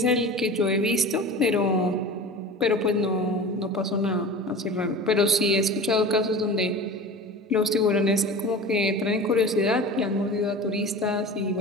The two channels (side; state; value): both; normal; correlation 0.35